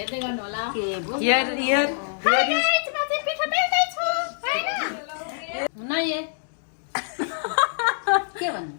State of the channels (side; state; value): right; silent; digital silence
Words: गर्नु होला के भन्नु